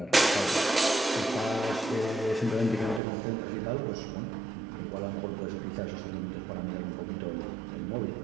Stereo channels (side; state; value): left; drops out; at 3.0 s